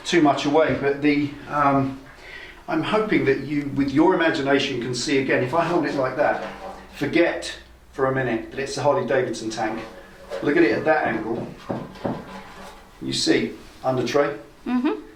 too much away, but I'm hoping that you, with your imagination, can see again. If I hold it like that, forget for a minute that it's a Harley Davidson tank. Look at it at that angle. You see under tray,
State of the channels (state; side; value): identical; both; correlation 1.00